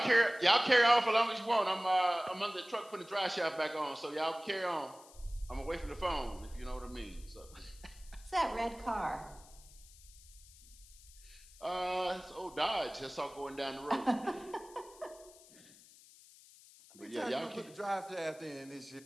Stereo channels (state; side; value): noise; left; hiss, 22 dB below the sound